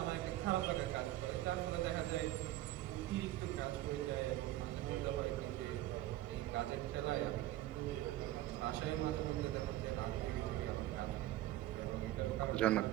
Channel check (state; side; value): quieter; left; 15.1 dB